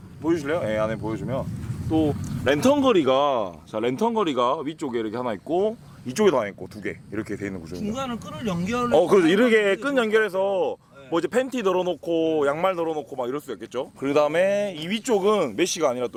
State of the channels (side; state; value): both; identical; correlation 1.00